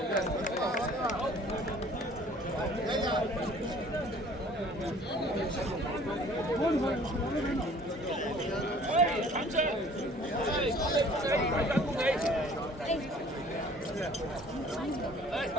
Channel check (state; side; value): normal; both; correlation 0.52